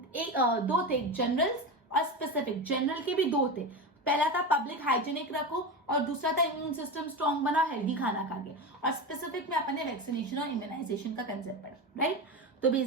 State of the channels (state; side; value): normal; both; correlation 0.21